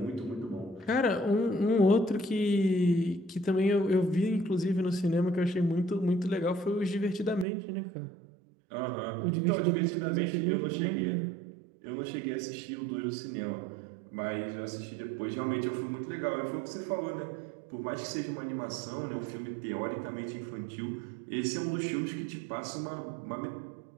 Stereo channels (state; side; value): drops out; left; at 7.5 s